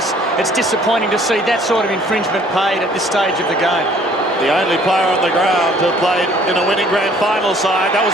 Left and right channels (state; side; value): normal; both; correlation 0.58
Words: it's disappointing to see that sort of infringement paid at this stage of the game. The only player on the ground who played in a winning grand final side, that was